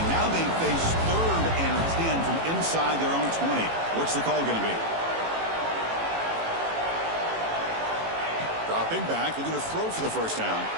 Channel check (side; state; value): left; late; 18 ms